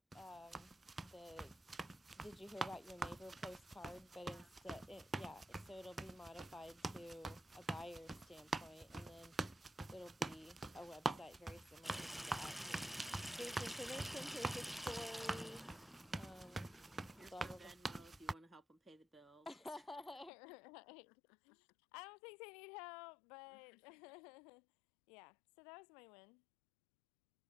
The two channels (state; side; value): drops out; right; at 20.3 s